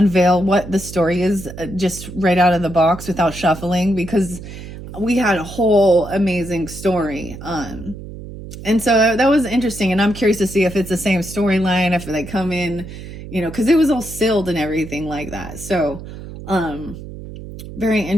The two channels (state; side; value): noise; right; hum, 12 dB below the sound